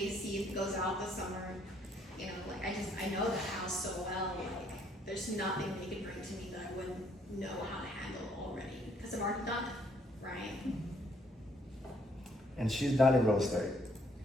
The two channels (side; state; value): both; normal; correlation 0.66